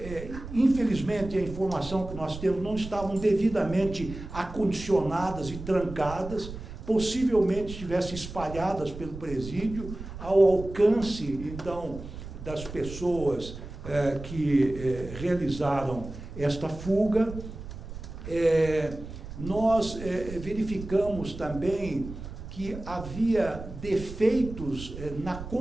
infelizmente, a informação que nós temos não estavam devidamente acondicionadas e trancadas, possivelmente estivessem espalhadas pelo presídio, ao alcance, então, das pessoas que realizaram esta fuga. Nós verificamos também que havia defeitos na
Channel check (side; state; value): right; noise; rumble, 11 dB below the sound